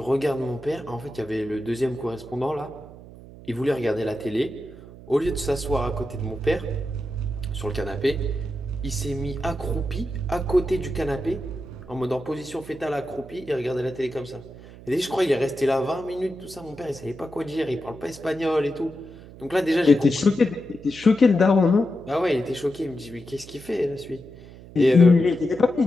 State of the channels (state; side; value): noise; right; hum, 18 dB below the sound